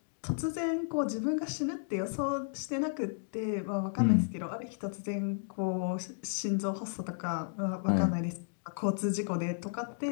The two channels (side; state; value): right; silent; digital silence